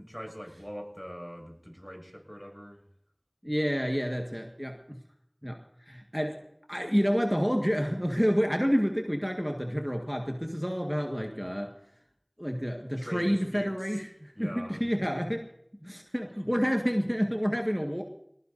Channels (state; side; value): identical; both; correlation 1.00